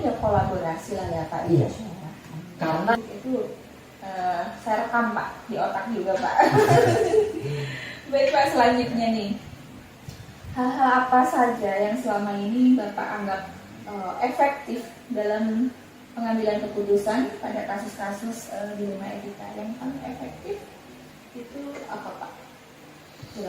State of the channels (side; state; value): both; identical; correlation 1.00